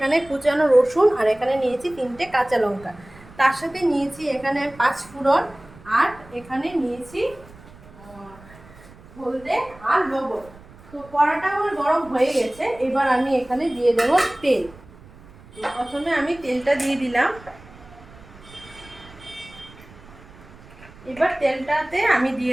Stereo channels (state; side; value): noise; right; rumble, 22 dB below the sound